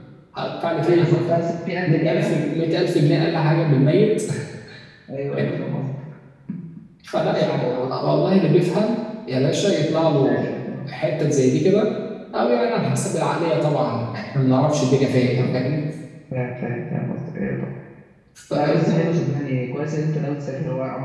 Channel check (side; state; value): both; identical; correlation 1.00